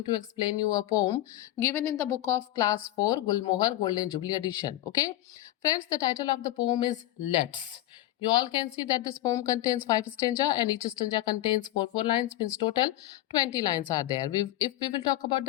to explain you a poem given in the book of class 4 Gulmohar Golden Jubilee edition. Okay? Friends, the title of the poem is Let's. You all can see that this poem contains 5 stanza and each stanza contains 4 lines, means total 20 lines are there. If we will talk about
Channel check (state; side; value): quieter; right; 14.9 dB